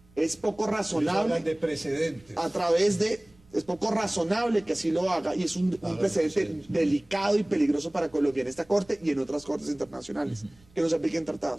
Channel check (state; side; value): noise; right; rumble, 29 dB below the sound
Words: Es poco razonable de precedentes. Es poco razonable que así lo haga y es un precedente delicado y peligroso para Colombia en esta Corte y en otras Cortes internacionales que no se apliquen